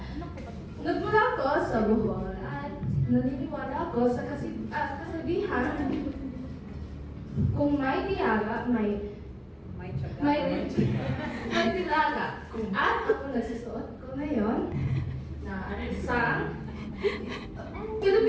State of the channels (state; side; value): identical; both; correlation 1.00